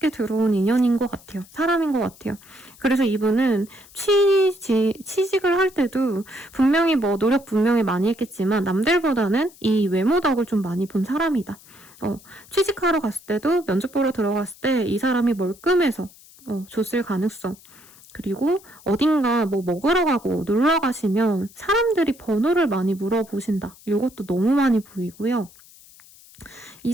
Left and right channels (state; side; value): noise; left; hiss, 24 dB below the sound